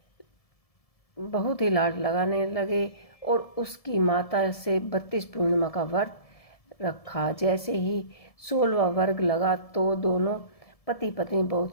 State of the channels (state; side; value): late; right; 1.7 ms